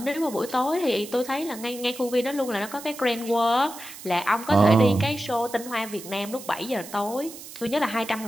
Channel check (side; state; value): right; noise; hiss, 14 dB below the sound